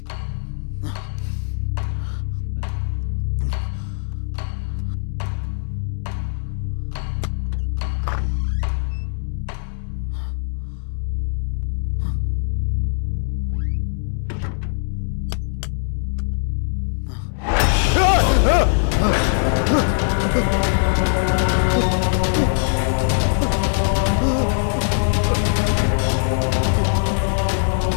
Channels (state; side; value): silent; right; 65 dB below the other